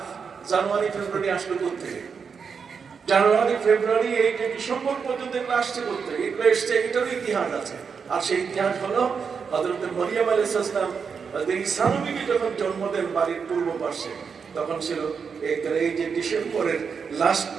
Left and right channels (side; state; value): left; quieter; 6.0 dB